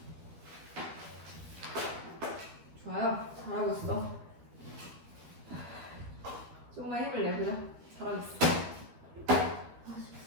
좋아요. 잘하고 있어. 조금만 힘을 내, 그죠? 잘하고 있어.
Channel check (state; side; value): late; left; 12 ms